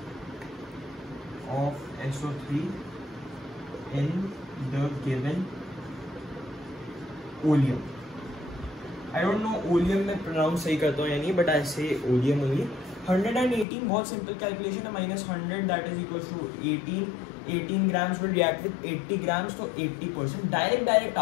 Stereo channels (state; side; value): drops out; right; at 13.7 s